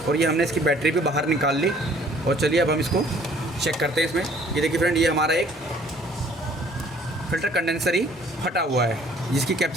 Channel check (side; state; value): both; normal; correlation 0.57